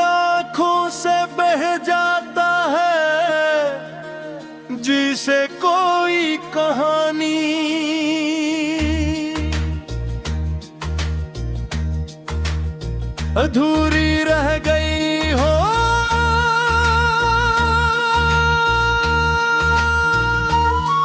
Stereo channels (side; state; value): both; identical; correlation 1.00